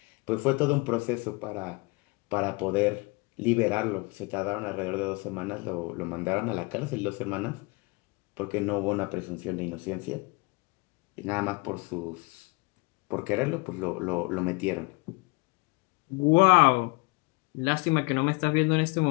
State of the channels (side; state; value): right; quieter; 28.0 dB